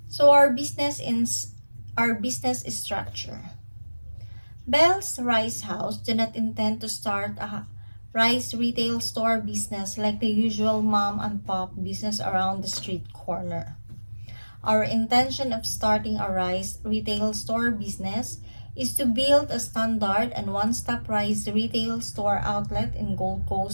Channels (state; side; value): inverted; both; correlation -1.00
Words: So our business structure. Bell's Rice House do not intend to start a rice retail store business like the usual mom and pop business around the street corner. Our intention of starting a rice retail store business is to build a standard and one-stop rice retail store outlet in Gold